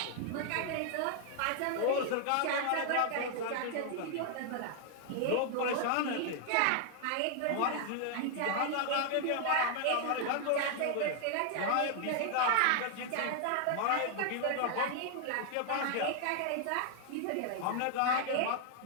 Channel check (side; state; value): both; different; correlation 0.00